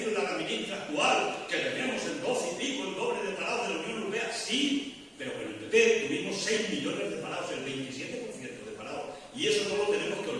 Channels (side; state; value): both; identical; correlation 1.00